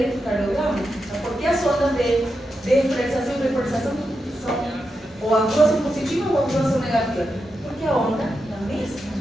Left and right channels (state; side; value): normal; both; correlation 0.87